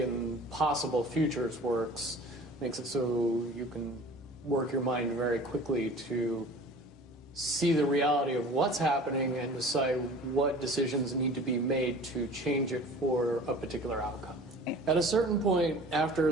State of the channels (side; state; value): both; normal; correlation 0.43